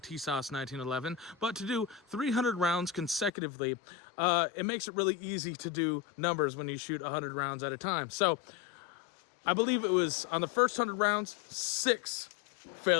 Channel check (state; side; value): drops out; right; at 3.3 s